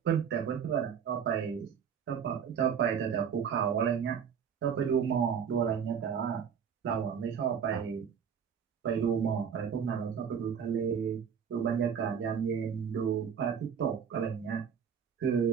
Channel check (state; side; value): quieter; left; 7.5 dB